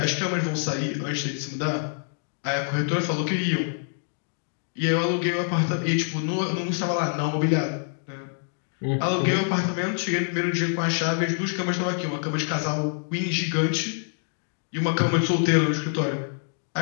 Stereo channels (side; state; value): right; silent; digital silence